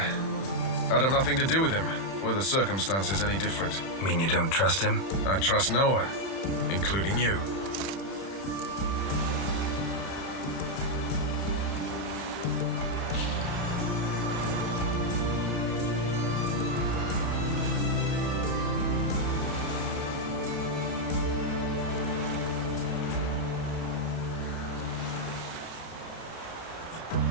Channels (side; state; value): right; late; 31 ms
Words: I'd have nothing to do with him. Were the circumstances any different? Mean you don't trust him? I trust no one, including you.